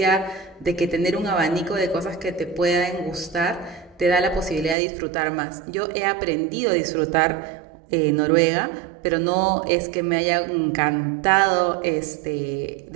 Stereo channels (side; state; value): left; drops out; at 4.8 s